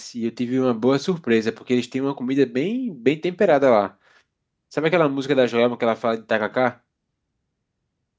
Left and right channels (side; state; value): both; identical; correlation 1.00